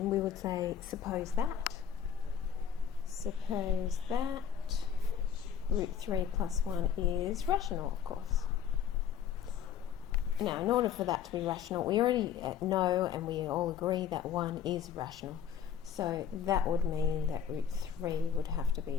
we would say, suppose that root 3 plus 1 is rational, of course. Now, in order for that to be rational, we already know and we all agree that 1 is rational. So that would mean that root 3 would have to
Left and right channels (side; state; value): right; quieter; 8.3 dB